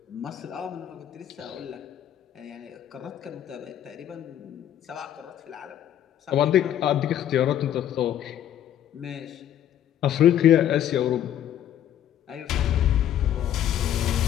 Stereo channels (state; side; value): quieter; right; 10.8 dB